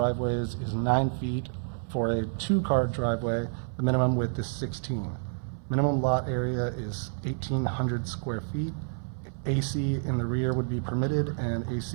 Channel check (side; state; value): left; silent; 59 dB below the other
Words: is 9 feet. For a 2-car driveway, the minimum width is 16. Minimum lot area is 1,800 square feet. AC in the rear would be permitted, and